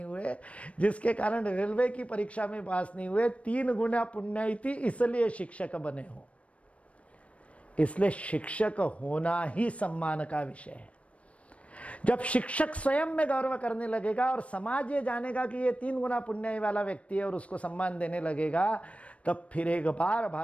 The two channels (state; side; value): late; right; 0.063 ms